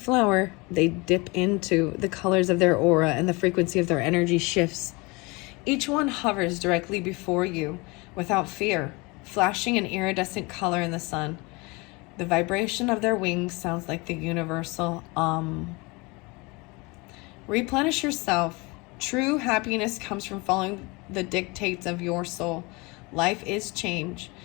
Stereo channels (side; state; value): right; quieter; 26.3 dB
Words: they dip into the colors of their aura, and the frequency of their energy shifts. Each one hovers directly before you, without fear, flashing an iridescent color in the sun. The vibration of their wings sounds like the universal Replenish yourself. True happiness comes from following the dictates of your soul. Life is change.